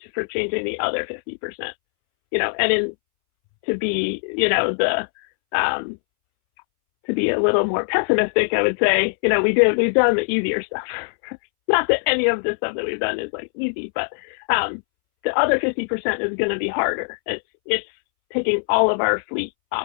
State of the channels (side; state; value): right; silent; 63 dB below the other